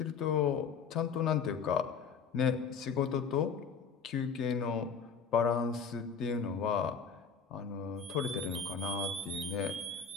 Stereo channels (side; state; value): right; quieter; 6.0 dB